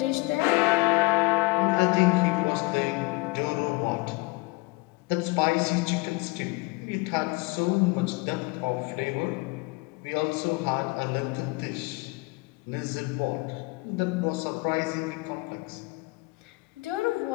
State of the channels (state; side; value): quieter; right; 25.0 dB